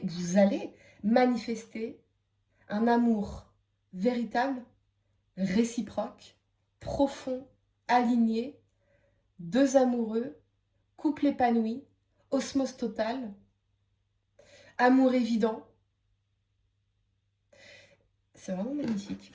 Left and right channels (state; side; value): identical; both; correlation 1.00